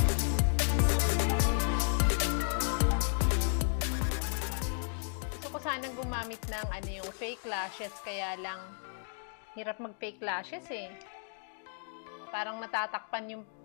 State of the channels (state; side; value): silent; right; digital silence